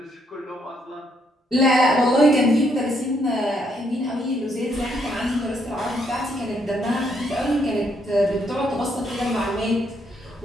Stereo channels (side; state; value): both; normal; correlation 0.73